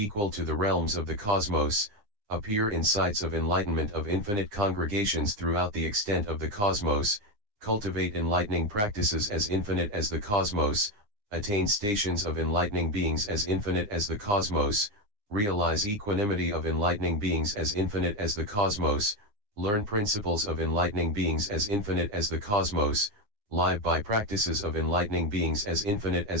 to the realms of the cosmos, appear in sights of enlightenment of infinite congregations throughout the extent of the cosmos, cultivate enlightening practices as infinite as the cosmos, attain stations of enlightening beings as infinite as the cosmos, realize equanimity of enlightening beings as infinite as the cosmos, learn principles of enlightening beings as infinite as the cosmos, live by practices of enlightening beings as infinite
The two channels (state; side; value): late; left; 9.8 ms